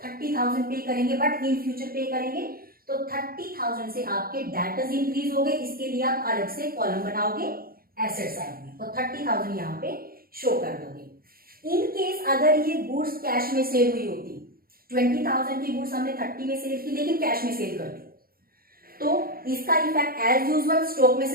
पे करेंगे, बट इन फ्यूचर पे करेंगे, तो 30,000 से आपके डेटर्स इंक्रीज हो गए। इसके लिए आप अलग से कॉलम बनाओगे एसेट साइड में, और 30,000 यहाँ पे शो कर दोगे। इन केस अगर ये गुड्स कैश में सेल हुई होती, 20,000 की गुड्स हमने 30 में सेल की लेकिन कैश में सेल कर दी, तो इसका इफेक्ट एज यूजुअल स्टॉक में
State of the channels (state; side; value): late; left; 0.43 ms